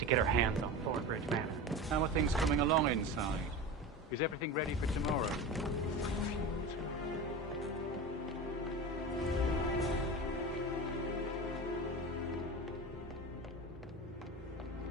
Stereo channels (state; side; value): normal; both; correlation 0.28